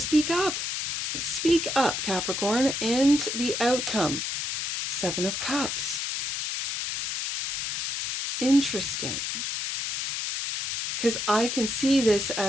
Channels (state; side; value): noise; left; hiss, 2 dB below the sound